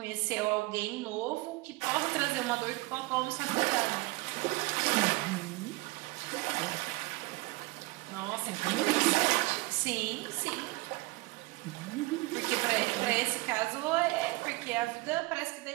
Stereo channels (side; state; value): left; quieter; 22.6 dB